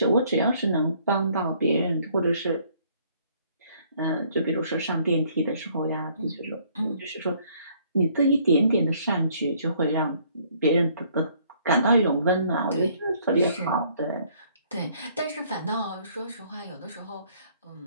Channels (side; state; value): both; inverted; correlation -0.63